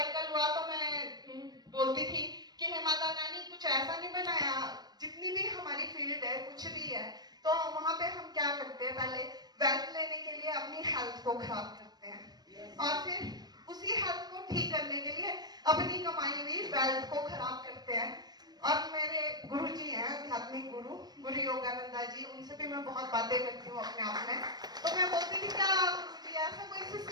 हुआ तो मैं बोलती थी कि हे माता रानी कुछ ऐसा नहीं बनाया, जितनी भी हमारी फील्ड है कुछ भी है तो वहां पे हम क्या करते हैं, पहले वेल्थ लेने के लिए अपनी हेल्थ को खराब करते हैं, और फिर उसी हेल्थ को ठीक करने के लिए अपनी कमाई हुई वेल्थ को खराब करते हैं। और मेरे गुरु जी हैं, आध्यात्मिक गुरु योगानंदा जी, उनसे भी मैं बहुत बातें करती हूँ अपने आप में। तो मैं बोलती थी क्या गुरु जी ऐसा कोई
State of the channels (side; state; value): left; late; 0.19 ms